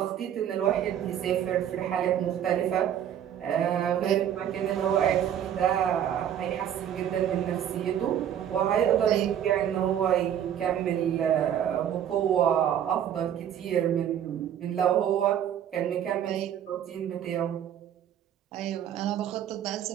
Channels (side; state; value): left; quieter; 9.9 dB